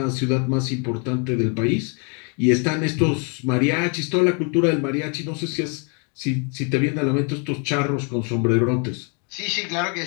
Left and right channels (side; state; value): right; quieter; 37.0 dB